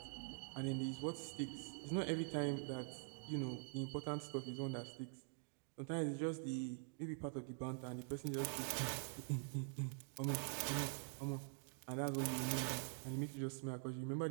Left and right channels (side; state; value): left; silent; digital silence